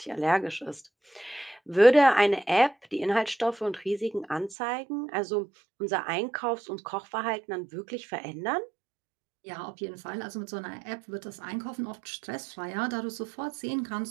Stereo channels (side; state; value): left; drops out; at 4.5 s